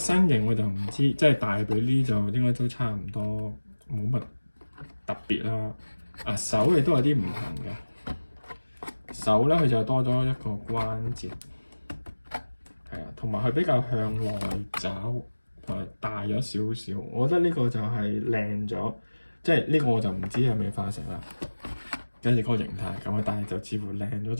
形我就唔知，即係大髀呢就應該都差唔多，冇乜特別啦。啊手亦都有啲唔同嘅。手咧佢就多咗一個關節，係啊，同埋佢比較向內找，同埋大咗少少。我覺得呢個就係靚咗，即係呢個我就唔知係咪化石啦。跟住嗰個形態咁啊，但係就似乎靚咗，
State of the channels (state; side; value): inverted; both; correlation -1.00